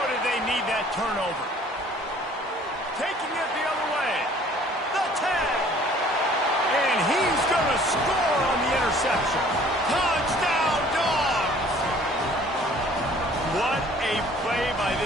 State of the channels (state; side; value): normal; both; correlation 0.54